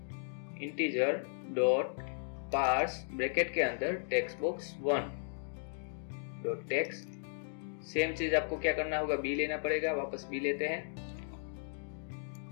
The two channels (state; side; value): silent; right; digital silence